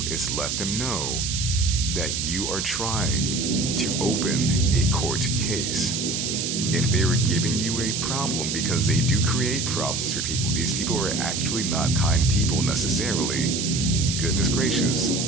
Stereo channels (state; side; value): noise; right; hiss, 2 dB below the sound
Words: is let them know that you are trying to open a court case. If they were giving you a problem, because they do create problems for people. These people are actually not kind people necessarily. Goodness gracious.